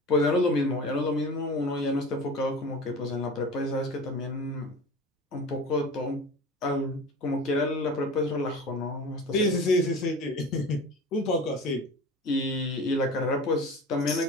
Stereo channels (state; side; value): normal; both; correlation 0.36